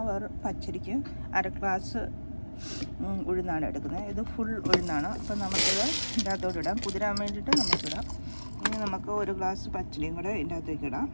പച്ചരിക്ക് അര ഗ്ലാസ് ഉഴുന്നാണ് എടുക്കുന്നത്. ഇത് ഫുൾ ഉഴുന്നാണ്. അപ്പോൾ നമുക്കത് ഇതിൻ്റെ അകത്തോട്ട് ഇടാം. കുതിരാൻ വേണ്ടിയിട്ട് നമുക്കിടാം. ഇനി നമുക്ക് ഒരു ഗ്ലാസ് പച്ചരിയും കൂടെ ഇതിൻ്റെ അകത്തേക്ക് ഇടാം.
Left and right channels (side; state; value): both; inverted; correlation -1.00